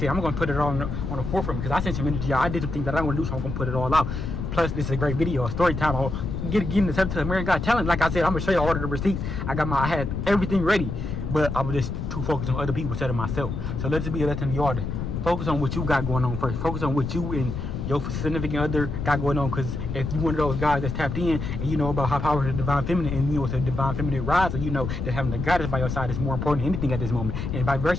I'm gonna put it on the forefront because I sent some energy out. I did some things that I want to do, so I'm gonna put it all out. Plus, this is a great video, a story time. I'll get into the American Got Talent. Like I said, I'm gonna show you all of the receipts. I had everything ready, but I was just too focused on other people instead of myself. So let's be a lesson to y'all to focus on what you got going on first. Focus on what you and your significant other got going on, because if you one of those guys that's tapped in and you know about how powerful the divine feminine, and you know it's a divine feminine rise, and you know that having the goddess by your side is more important than anything at this moment, and vice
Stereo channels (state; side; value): noise; left; rumble, 4 dB below the sound